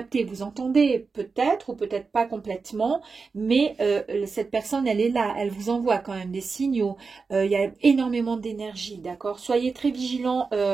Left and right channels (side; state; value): left; quieter; 4.6 dB